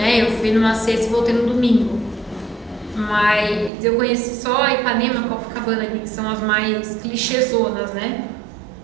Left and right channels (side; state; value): left; drops out; at 3.7 s